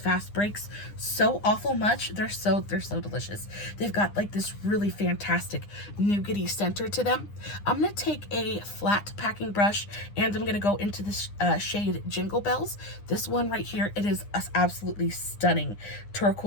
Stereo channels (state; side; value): late; right; 9.9 ms